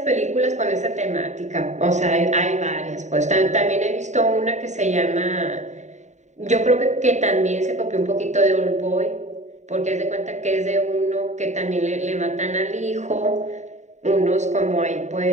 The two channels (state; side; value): late; left; 0.34 ms